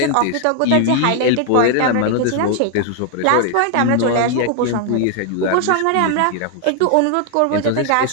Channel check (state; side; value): different; both; correlation 0.00